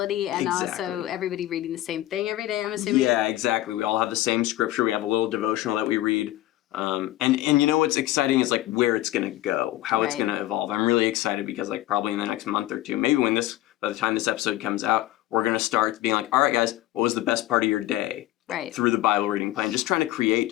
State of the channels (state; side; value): quieter; right; 15.4 dB